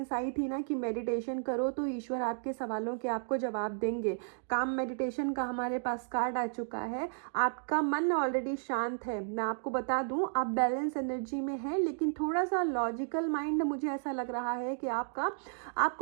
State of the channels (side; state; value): left; silent; digital silence